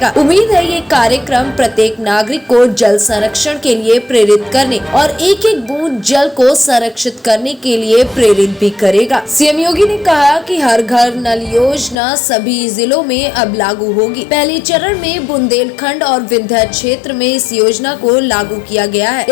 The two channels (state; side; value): drops out; right; at 12.0 s